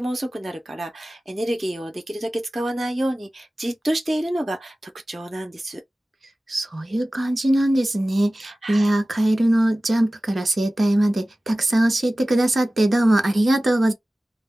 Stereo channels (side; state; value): both; normal; correlation 0.97